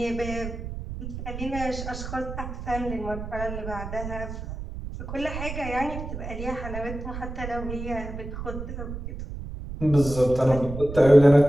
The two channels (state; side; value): noise; right; rumble, 8 dB below the sound